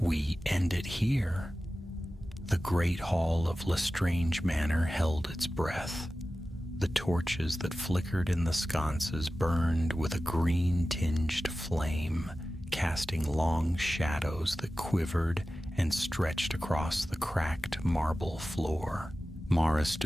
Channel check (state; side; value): normal; both; correlation 0.95